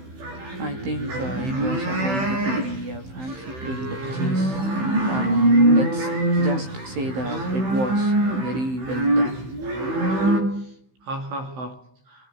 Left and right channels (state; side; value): late; left; 15 ms